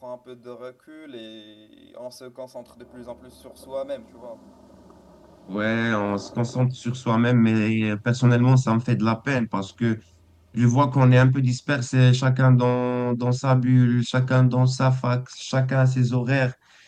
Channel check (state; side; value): identical; both; correlation 1.00